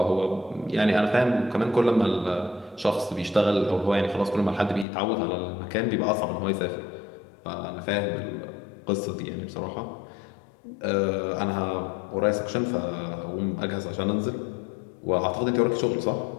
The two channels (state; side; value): drops out; right; at 4.9 s